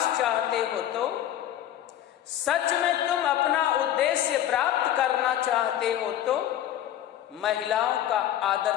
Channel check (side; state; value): right; quieter; 11.8 dB